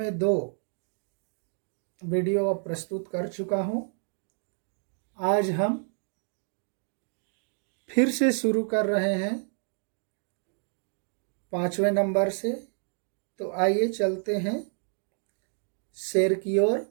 2 वीडियो प्रस्तुत कर चुका हूं। आज हम फिर से शुरू कर रहे हैं 5वें नंबर से। तो आइए चलते हैं शेर की ओर।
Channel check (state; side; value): silent; left; 58 dB below the other